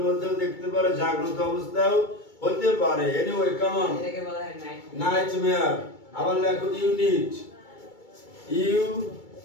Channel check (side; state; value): right; late; 2.3 ms